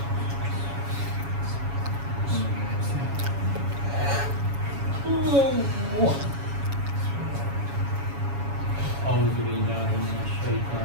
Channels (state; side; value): late; left; 7.2 ms